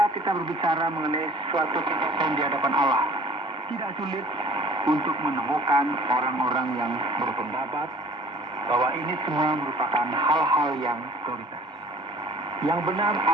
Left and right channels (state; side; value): normal; both; correlation 0.50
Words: kita berbicara mengenai suatu kesaksian di hadapan Allah, tidak sulit untuk menemukan orang-orang yang berpendapat bahwa ini semua merupakan hal-hal yang prioritas. Yang benar